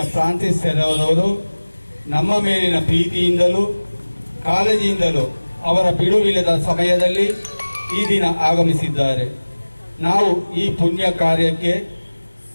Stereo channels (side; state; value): both; inverted; correlation -1.00